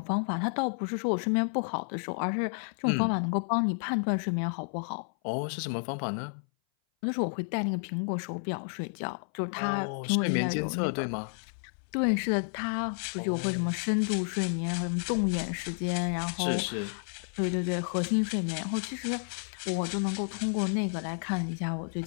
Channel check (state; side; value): silent; right; 57 dB below the other